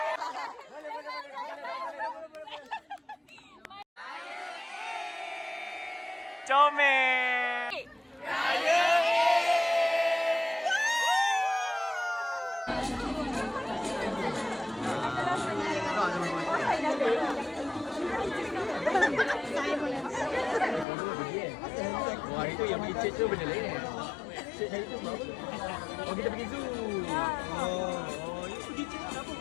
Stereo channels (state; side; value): drops out; right; at 20.9 s